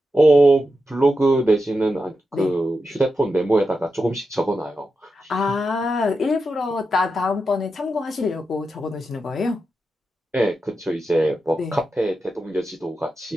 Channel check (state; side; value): normal; both; correlation 0.88